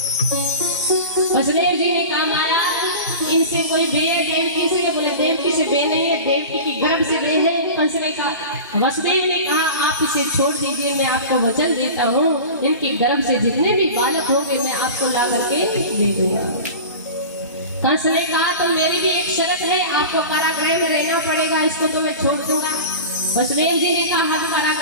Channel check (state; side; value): inverted; both; correlation -0.33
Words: वसुदेव जी ने कहा महाराज इनसे कोई बे है देवकी से? बोले देवकी से बे नहीं है, देवकी की गर्भ से बे है। कंस ने कहा, वसुदेव ने कहा आप इसे छोड़ दीजिए, मैं आपको वचन देता हूँ इनके गर्भ से जितने भी बालक होंगे मैं आपको ला करके दे दूंगा। कंस ने कहा तो मेरी भी एक शर्त है, आपको कारागृह में रहना पड़ेगा, इसको तो मैं छोड़ दूंगा। वसुदेव जी ने कहा हम